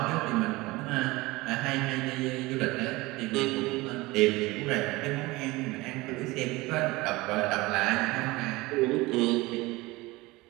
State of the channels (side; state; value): left; quieter; 21.4 dB